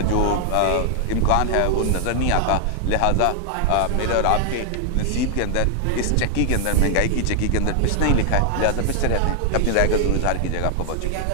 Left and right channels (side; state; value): both; different; correlation 0.00